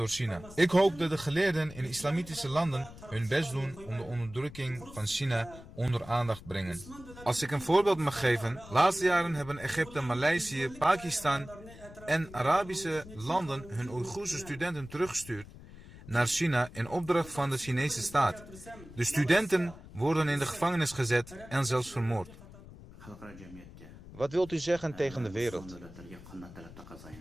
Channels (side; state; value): left; noise; rumble, 17 dB below the sound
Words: China. Ik hoop dat de geleerden in islamitische landen hun best doen om de onderdrukking van China onder aandacht brengen. Als ik een voorbeeld mag geven, laatste jaren hebben Egypte, Maleisië, Pakistan en Arabische landen hun Oeigoerse studenten teruggestuurd naar China in opdracht van de Chinese staat. De studenten worden in de gevangenis gezet en zelfs vermoord. Wat wilt u zeggen tegen de wereld?